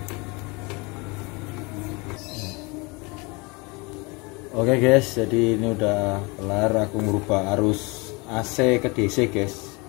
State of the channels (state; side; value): quieter; right; 27.3 dB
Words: Oke guys, jadi ini udah kelar aku merubah arus AC ke DC guys.